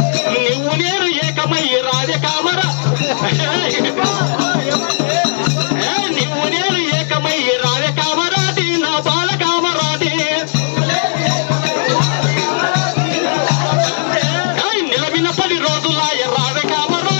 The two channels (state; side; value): silent; right; digital silence